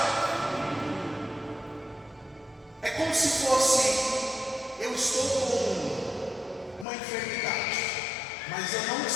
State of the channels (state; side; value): drops out; right; at 6.9 s